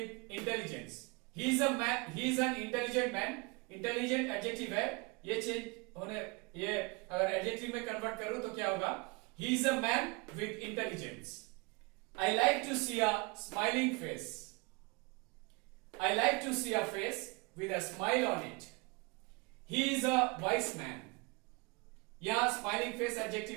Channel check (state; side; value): quieter; left; 28.5 dB